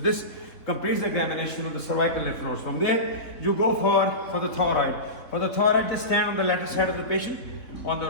completes the examination of the cervical lymph nodes. From there, you go for the thyroid. For the thyroid, just stand on the lateral side of the patient, on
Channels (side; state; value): right; late; 3.7 ms